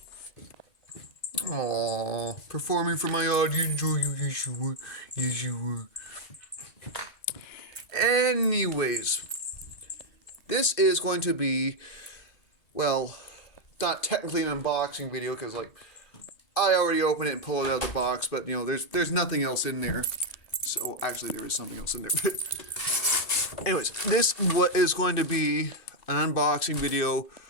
Aww, performing for my audience. Oh, yes, you were. Yes, you were. Anyways, this is going to be, well, not technically an unboxing video because, like, I already opened it and pulled it out of the box, but, you know, there's nothing else in there. So, actually, there is something else in there. Anyways, this is going to be an unboxing video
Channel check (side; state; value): right; late; 2.5 ms